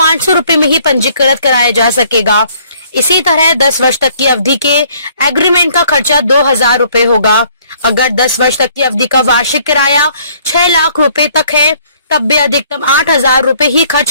रुपए में ही पंजीकृत कराया जा सकेगा। इसी तरह 10 वर्ष तक की अवधि के एग्रीमेंट का खर्चा 2000 रुपए होगा। अगर 10 वर्ष तक की अवधि का वार्षिक किराया 6 लाख रुपए तक है, तब भी अधिकतम 8000 रुपए ही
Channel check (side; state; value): both; inverted; correlation -0.61